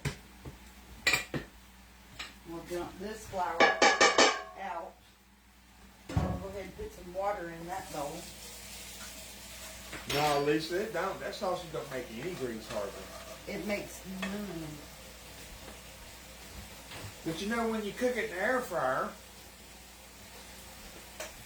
We'll dump this flour out. I'll go ahead and put some water in that bowl. No, Lisa, it don't. That sausage don't make any grease hardly. It makes none. But you know, when you cook it in the air fryer,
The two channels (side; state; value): both; identical; correlation 1.00